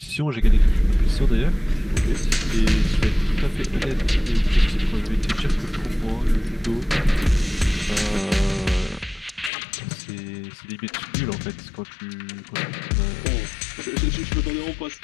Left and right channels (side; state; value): right; drops out; at 9.5 s